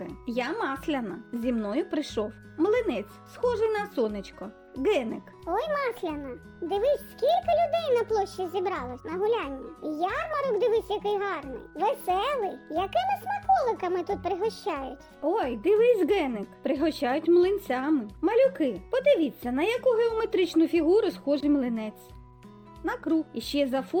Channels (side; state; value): both; identical; correlation 1.00